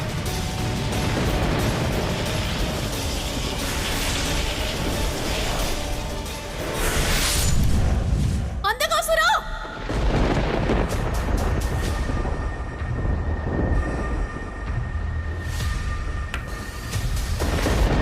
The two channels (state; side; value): identical; both; correlation 1.00